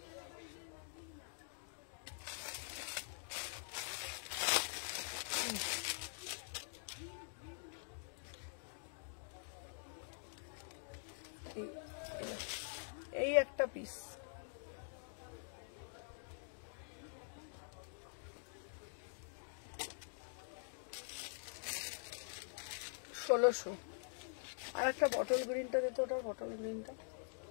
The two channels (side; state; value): right; silent; digital silence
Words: এই একটা পিস। 1600। আর একটা বটল গ্রিনটা দিত, ওটার বটল গ্রিনটা।